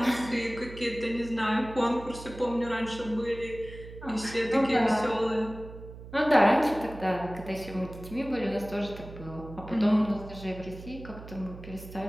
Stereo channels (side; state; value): right; noise; hum, 14 dB below the sound